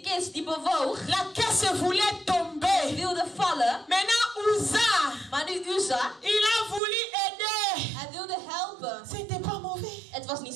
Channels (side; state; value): left; drops out; at 6.8 s